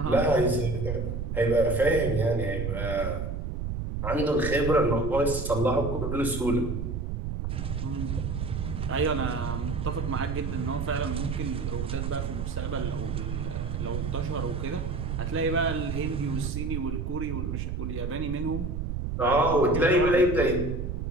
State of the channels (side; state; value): right; noise; rumble, 3 dB below the sound